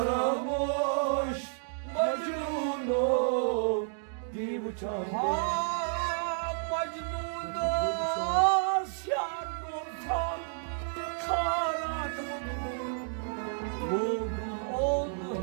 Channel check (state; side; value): silent; left; digital silence